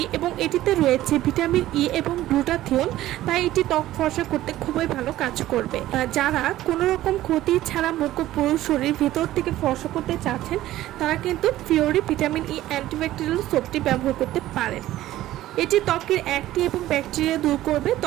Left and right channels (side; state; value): left; quieter; 14.7 dB